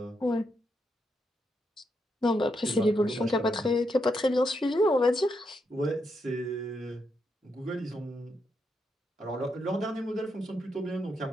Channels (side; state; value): both; normal; correlation 0.81